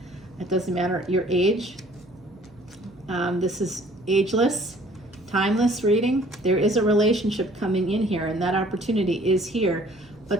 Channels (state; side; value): noise; right; hum, 30 dB below the sound